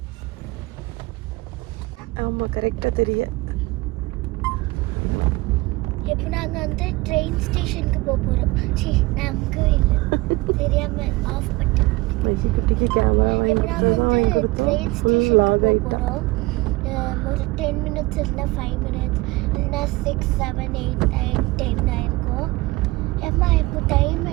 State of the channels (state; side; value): quieter; left; 21.5 dB